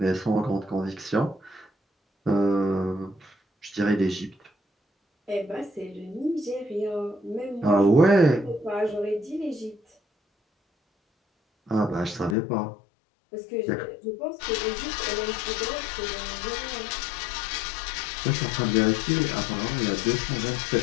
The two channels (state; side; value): drops out; right; at 12.4 s